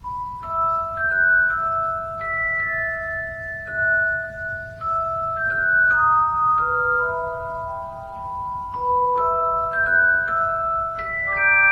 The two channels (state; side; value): identical; both; correlation 1.00